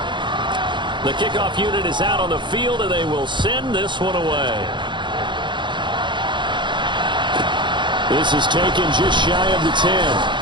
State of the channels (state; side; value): late; left; 0.23 ms